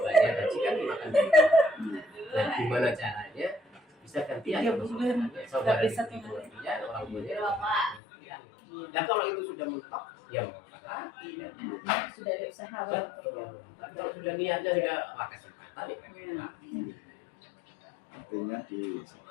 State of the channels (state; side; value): drops out; right; at 8.0 s